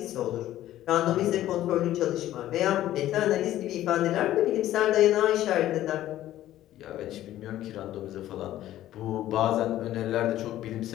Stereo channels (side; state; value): right; quieter; 13.6 dB